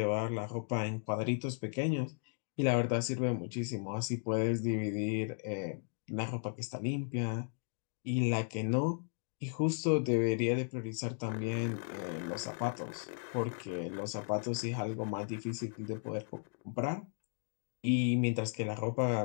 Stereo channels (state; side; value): silent; right; 54 dB below the other